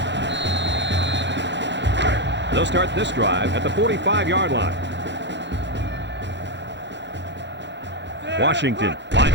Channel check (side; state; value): left; late; 0.52 ms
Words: They'll start this drive at the 45-yard line. Washington